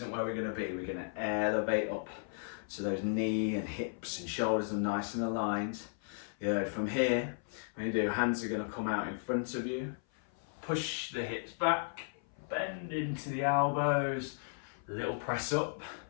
where we're going to be. We're going to elevate up, so those knee and hips and shoulders are nice and aligned. Yeah, from here, when you do, hands are going to come out in front of you, push the hips back, bend into the elbows, little press up,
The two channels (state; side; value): silent; right; 54 dB below the other